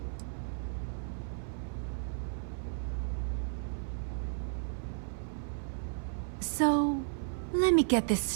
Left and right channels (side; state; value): left; silent; 55 dB below the other